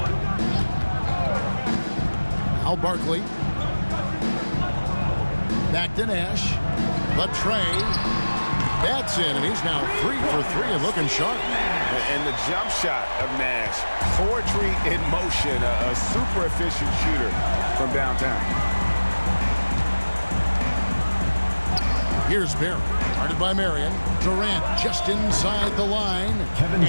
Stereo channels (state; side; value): inverted; both; correlation -1.00